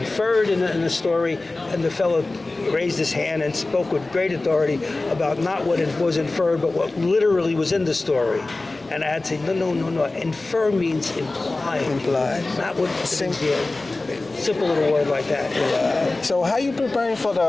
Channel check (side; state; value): right; quieter; 3.1 dB